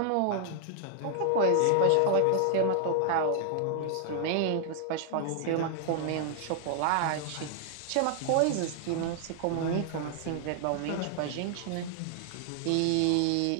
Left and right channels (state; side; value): different; both; correlation 0.00